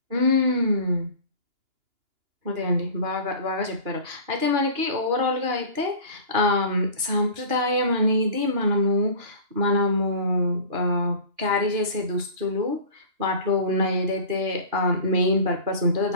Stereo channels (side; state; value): left; late; 2.9 ms